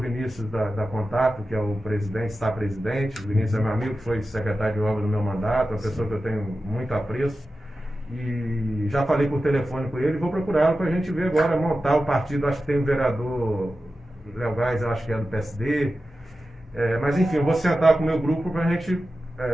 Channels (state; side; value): normal; both; correlation 0.93